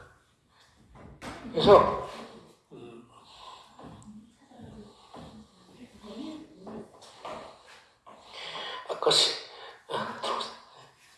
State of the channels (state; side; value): identical; both; correlation 1.00